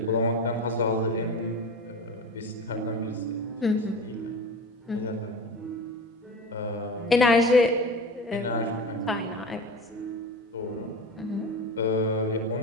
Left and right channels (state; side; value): normal; both; correlation 0.31